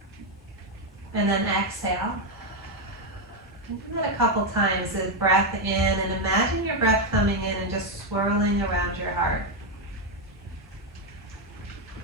And then exhale. Do that a couple times, the breath in, and imagine your breath coming in and just swirling around your heart.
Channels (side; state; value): both; normal; correlation 0.05